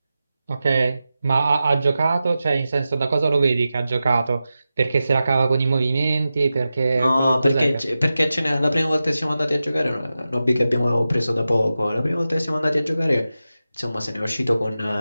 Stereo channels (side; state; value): both; inverted; correlation -0.93